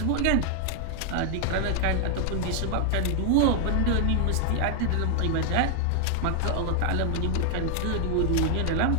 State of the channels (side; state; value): both; different; correlation 0.00